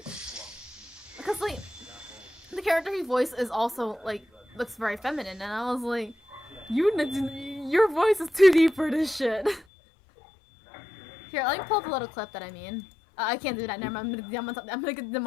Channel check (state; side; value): drops out; right; at 9.7 s